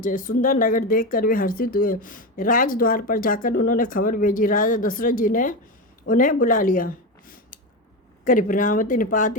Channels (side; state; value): both; normal; correlation 0.17